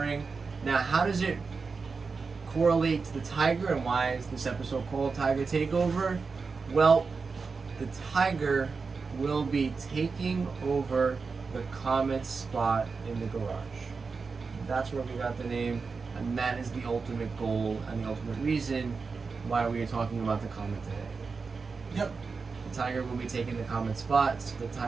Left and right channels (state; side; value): quieter; left; 4.7 dB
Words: Now, how does it correlate to the Tiger, and why is this episode called Tiger Takeover? Well, the Tiger will be taking over the Comet spot in the garage. That's where we got the name, and that is the ultimate goal and the ultimate reason why we are talking about the Comet today. Yep. The Tiger will be taking the Comet spot. So the